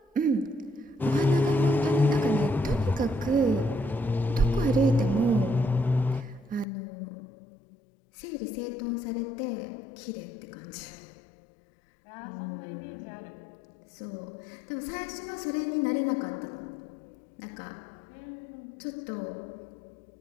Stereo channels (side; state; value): right; drops out; at 6.7 s